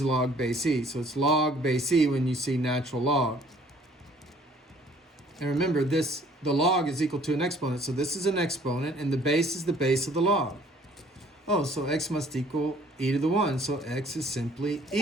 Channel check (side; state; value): both; normal; correlation 0.57